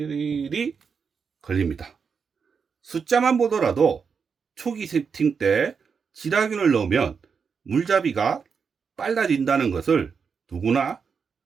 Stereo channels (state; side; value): quieter; left; 6.0 dB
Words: 걸립니다. 숫자만 보더라도 초기 세팅 때 질화균을 넣으면 물잡이가 빨라진다는 것을 누구나